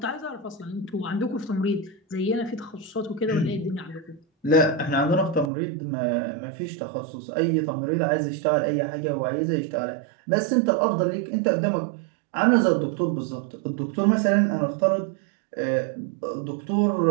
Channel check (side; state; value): left; drops out; at 5.5 s